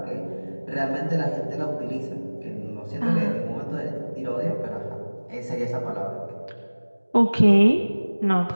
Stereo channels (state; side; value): inverted; both; correlation -1.00